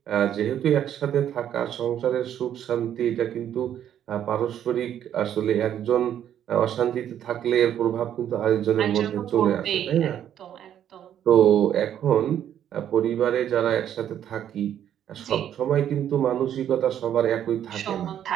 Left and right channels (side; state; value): left; quieter; 10.2 dB